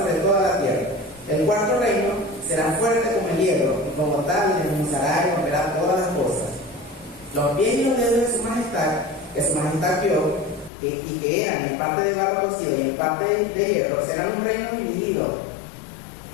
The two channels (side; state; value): right; drops out; at 10.7 s